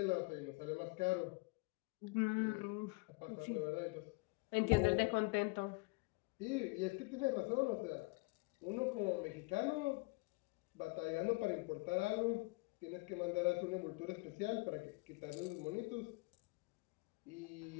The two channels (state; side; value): quieter; right; 26.9 dB